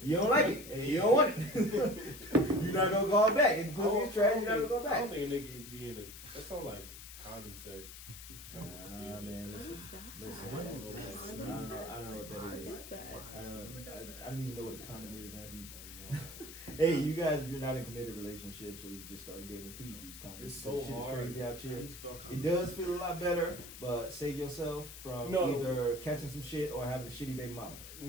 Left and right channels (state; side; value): noise; left; hiss, 13 dB below the sound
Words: you don't like it, and you don't want it. You're not gonna call back. If pussy is trash, you're not gonna go I back. don't think they can be in it. That sounds like condom sex. Nah, man, listen. What is that? I don't know what that is. What is that? I don't even know what a condom is. Hey, you guys, if you're not in committed relationships or you just started dating, please use condoms. It's so Shit is hard. crazy out How do here. you spell It condom? does feel a lot better, but save yourself from No. either catching some shit or having a shitty baby mama.